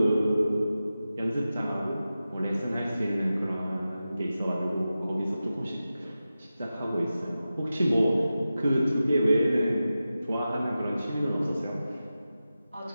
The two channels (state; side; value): inverted; both; correlation -0.93